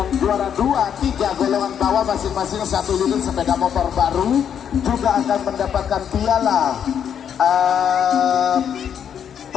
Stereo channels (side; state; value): right; quieter; 8.5 dB